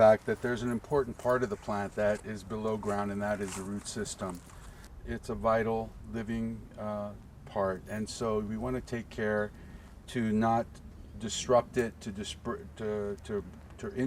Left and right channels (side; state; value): both; identical; correlation 1.00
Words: that there's an important part of the plant that is below ground, and that is the root system. It's a vital living part, and so we want to take care to not disrupt it, to